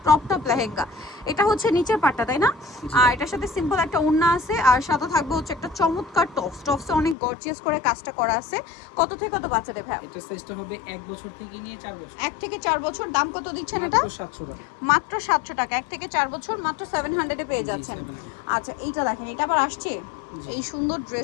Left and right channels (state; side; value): drops out; right; at 7.2 s